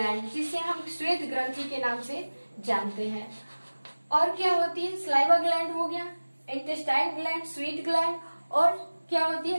जिसे हम श्वेत ग्रंथि के नाम से जानते हैं। और क्या होती है, सलाइवा ग्लैंड हो गया, इंटेस्टाइन ग्लैंड, स्वीट ग्लैंड, और क्या होती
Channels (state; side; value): inverted; both; correlation -1.00